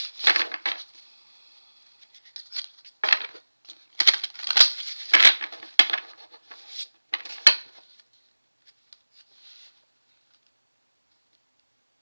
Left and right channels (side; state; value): both; inverted; correlation -1.00